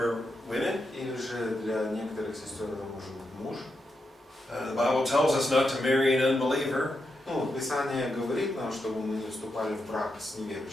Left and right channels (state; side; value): normal; both; correlation 0.85